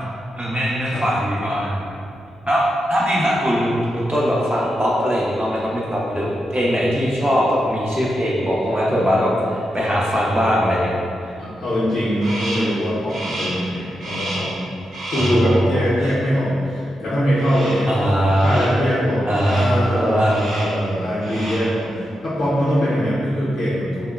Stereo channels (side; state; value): right; noise; hum, 29 dB below the sound